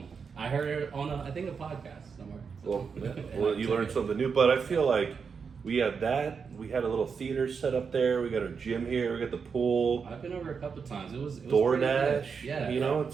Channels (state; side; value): quieter; left; 5.8 dB